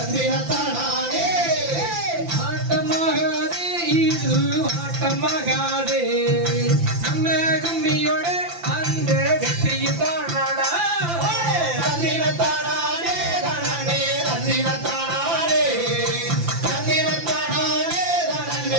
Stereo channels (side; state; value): left; late; 5.9 ms